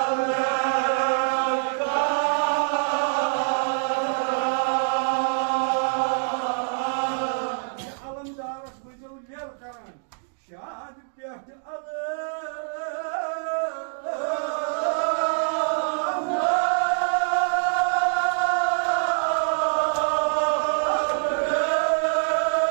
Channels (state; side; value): silent; left; 62 dB below the other